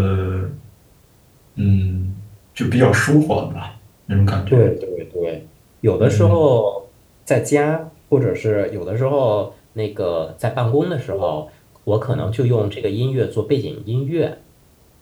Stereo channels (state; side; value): identical; both; correlation 1.00